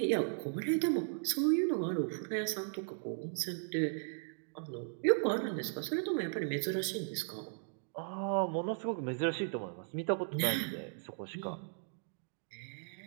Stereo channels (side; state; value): left; silent; digital silence